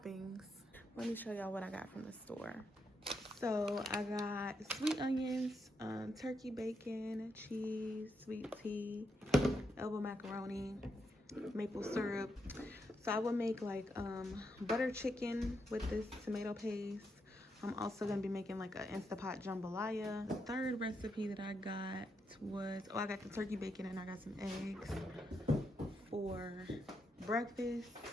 Let me show y'all what I got from the store. So I got sweet onions, turkey bacon, cheese, sweet tea, elbow macaroni, maple syrup. So I will make like butter chicken with this tomato paste. I'm also gonna be making like an Instapot jambalaya. The third recipe that I got was, I got the turkey bacon and I got some eggs for breakfast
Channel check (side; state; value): both; normal; correlation 0.81